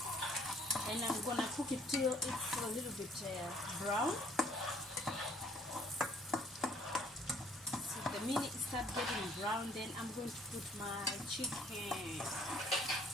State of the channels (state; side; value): normal; both; correlation 0.61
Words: And I'm gonna cook it till it's a little bit brown. So the minute it starts getting brown, then I'm going to put my chicken.